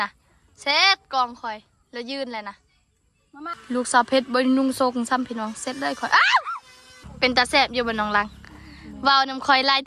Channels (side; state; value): both; identical; correlation 1.00